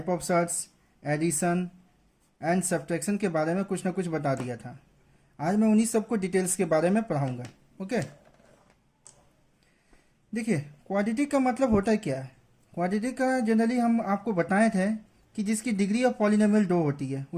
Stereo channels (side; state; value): both; identical; correlation 1.00